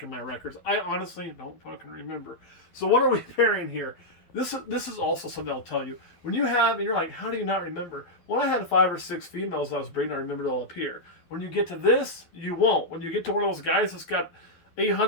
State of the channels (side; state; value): right; late; 12 ms